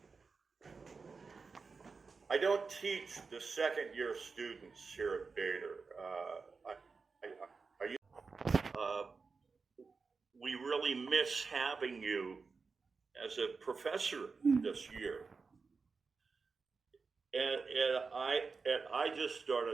I don't teach the second year students here at Bader. We really miss having you as a professor this year. And I just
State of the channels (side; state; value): left; quieter; 4.7 dB